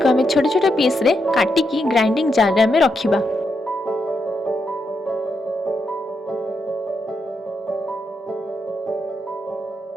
आमे छोटे छोटे पीस रे काटिकी ग्राइंडिंग जार रे आमे रखिबा।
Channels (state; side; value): normal; both; correlation 0.82